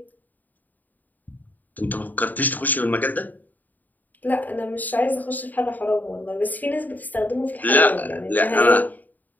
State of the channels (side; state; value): right; late; 0.084 ms